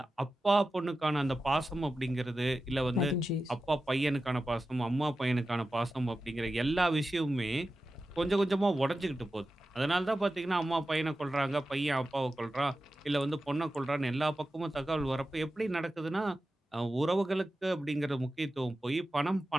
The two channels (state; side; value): normal; both; correlation 0.93